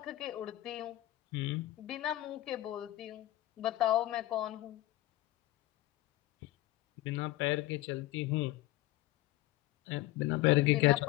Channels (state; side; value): quieter; right; 16.8 dB